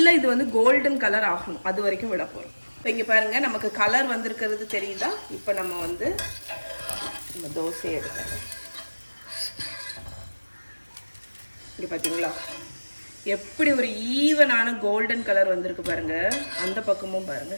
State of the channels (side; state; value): both; inverted; correlation -1.00